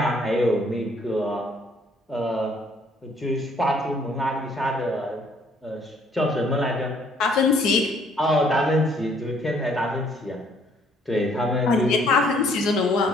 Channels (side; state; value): both; normal; correlation 0.63